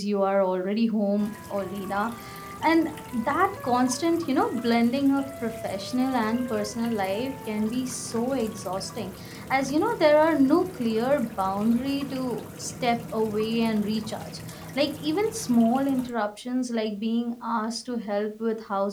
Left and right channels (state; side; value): identical; both; correlation 1.00